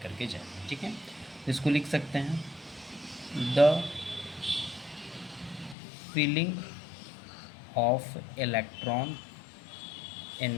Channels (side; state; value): right; drops out; at 5.8 s